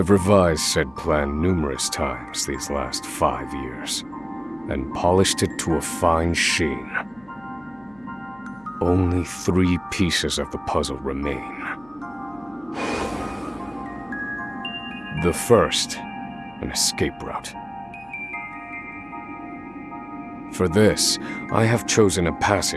revised said plan numerous times these last 5 years, and polished it to a fine sheen. Only 3 pieces of the puzzle remain. The first, an escape route. For this, I have chosen a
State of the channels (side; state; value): left; noise; hum, 28 dB below the sound